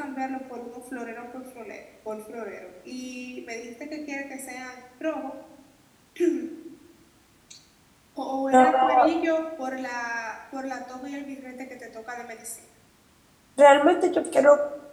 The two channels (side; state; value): both; identical; correlation 1.00